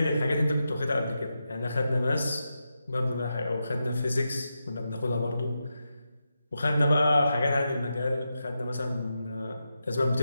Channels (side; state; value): both; inverted; correlation -0.88